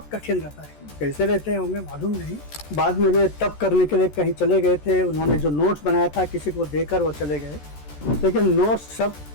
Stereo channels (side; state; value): right; late; 14 ms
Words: कठिन रहता है। कैसे रहते होंगे मालूम नहीं। बाद में वे तप करने के लिए कहीं चले गए थे, उन्होंने जो नोट्स बनाया था किसी को देकर वो चले गए, लेकिन नोट्स सब